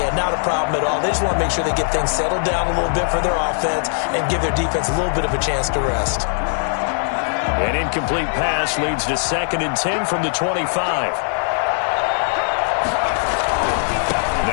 not a problem at all. They just want to make sure they get things settled down a little bit for their offense and give their defense a little bit of a chance to rest. An incomplete pass leads to 2nd and 10 from the 25.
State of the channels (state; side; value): silent; right; 66 dB below the other